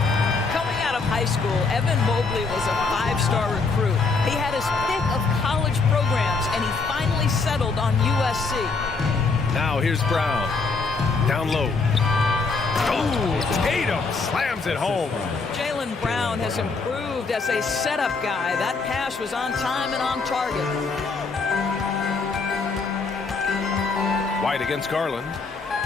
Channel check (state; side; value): quieter; right; 4.2 dB